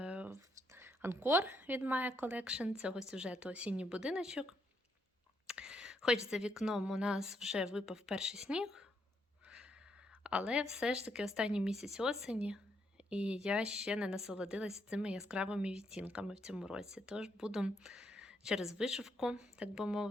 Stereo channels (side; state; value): both; normal; correlation 0.76